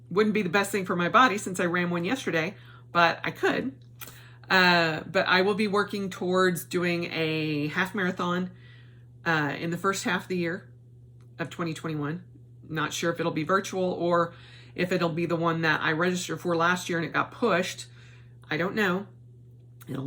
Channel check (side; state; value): both; identical; correlation 1.00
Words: Wouldn't be the best thing for my body since I ran one yesterday, but I could. But I will be working towards doing a half marathon in the first half of the year of 2021. Not sure if it'll be virtual or if it'll be the one that I registered for last year and it got pushed. I don't know. It'll